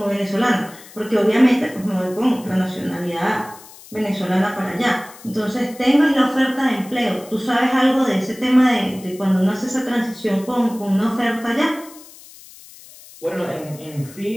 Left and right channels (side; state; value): left; noise; hiss, 20 dB below the sound